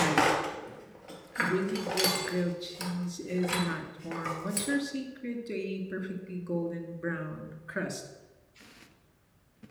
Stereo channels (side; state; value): both; identical; correlation 1.00